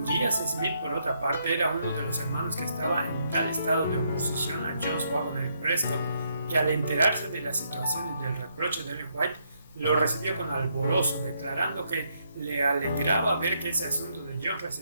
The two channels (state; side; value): inverted; both; correlation -0.75